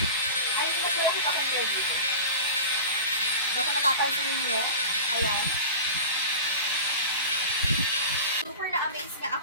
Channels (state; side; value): inverted; both; correlation -0.33